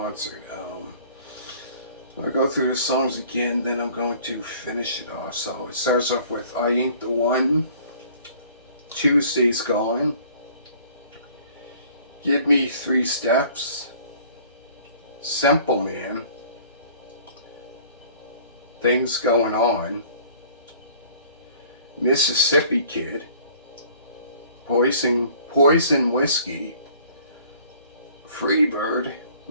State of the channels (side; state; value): both; inverted; correlation -0.52